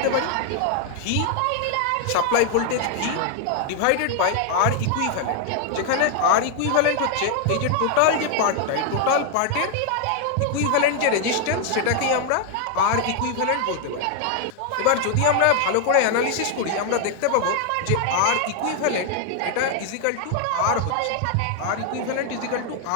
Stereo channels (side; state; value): both; different; correlation 0.00